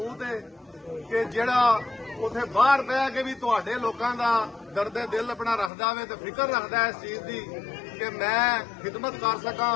ਹੈ ਕਿ ਜਿਹੜਾ ਉੱਥੇ ਬਾਹਰ ਬਹਿ ਕੇ ਵੀ ਤੁਹਾਡੇ ਲੋਕਾਂ ਦਾ ਦਰਦੇ ਦਿਲ ਆਪਣਾ ਰੱਖਦਾ ਵੇ ਤੇ ਫਿਕਰ ਰੱਖਦਾ ਇਸ ਚੀਜ਼ ਦੀ ਕਿ ਮੈਂ ਖਿਦਮਤ ਕਰ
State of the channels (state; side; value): drops out; right; at 5.7 s